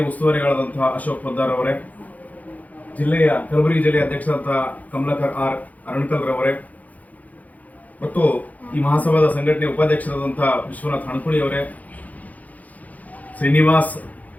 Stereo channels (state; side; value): late; right; 0.077 ms